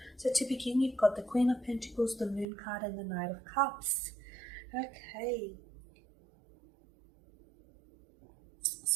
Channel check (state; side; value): drops out; left; at 2.5 s